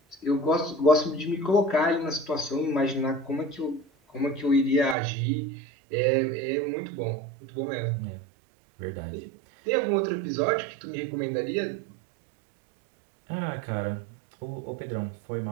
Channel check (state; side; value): drops out; left; at 5.0 s